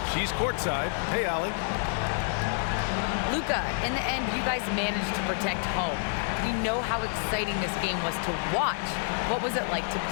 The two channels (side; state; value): right; silent; digital silence